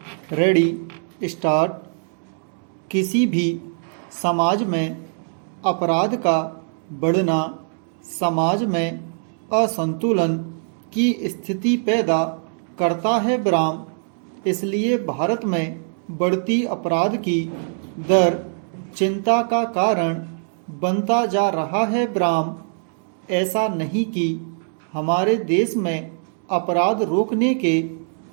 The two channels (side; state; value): left; silent; 64 dB below the other